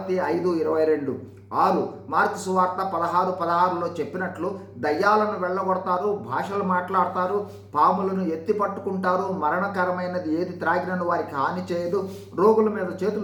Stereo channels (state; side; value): identical; both; correlation 1.00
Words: 5:22. 6. మార్కు సువార్త 16:16లో చెప్పినట్లు దయ్యాలను వెళ్ళగొడతారు, భాషలు మాట్లాడతారు, పాములను ఎత్తి పట్టుకుంటారు, మరణకరమైనది ఏది త్రాగినను వారికి హాని చేయదు, రోగుల మీద